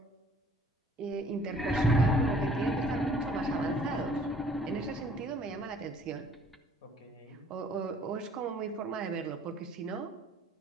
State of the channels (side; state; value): both; normal; correlation 0.57